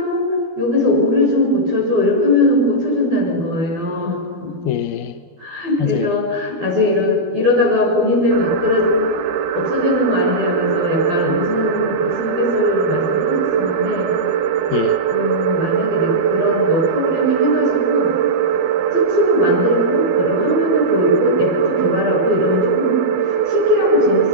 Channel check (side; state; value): left; late; 12 ms